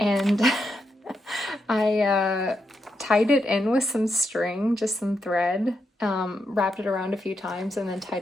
I tied it in with some string, just some thread, wrapped it around a few times and then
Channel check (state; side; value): normal; both; correlation 0.83